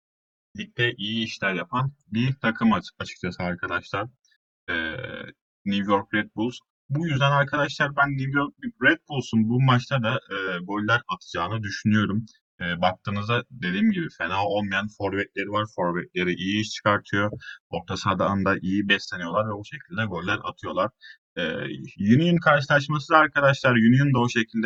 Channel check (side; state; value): both; identical; correlation 1.00